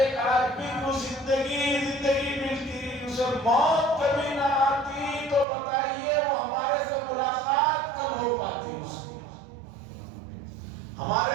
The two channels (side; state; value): left; drops out; at 5.5 s